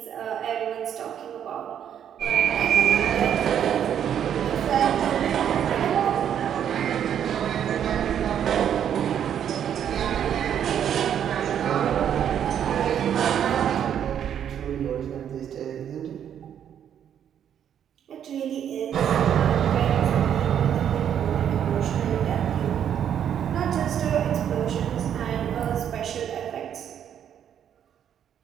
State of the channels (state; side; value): quieter; left; 9.3 dB